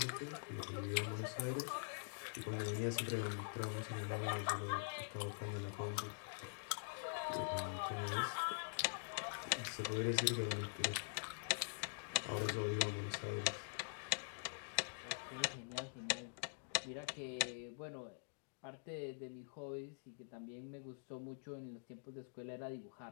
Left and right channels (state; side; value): silent; right; digital silence